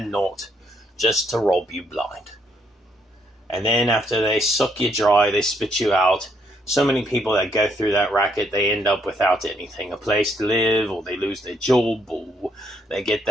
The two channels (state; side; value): normal; both; correlation 0.72